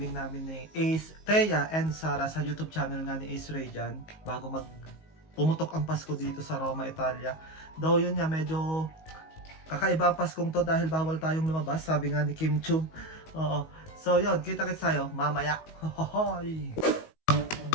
namin ni Ace, Thea and Sarah sa YouTube channel nga ni Ace Ray dyan, bago pumutok ang Pasko dito sa Roma, Italia. Though yun nga, medyo kakaiba ang Paskong to dahil bawal tayong lumabas, sabi nga ni Kim Chu. So yun, kita-kits tayo mamaya. Hohoy!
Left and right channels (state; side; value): late; right; 19 ms